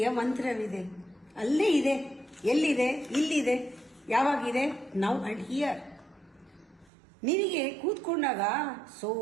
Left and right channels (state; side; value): drops out; left; at 6.9 s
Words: ಮಂತ್ರವಿದೆ. ಅಲ್ಲೇ ಇದೆ. ಎಲ್ಲಿದೆ? ಇಲ್ಲಿದೆ. ಯಾವಾಗಿದೆ? Now and here. ನಿನಗೆ ಕೂತ್ಕೊಂಡಾಗ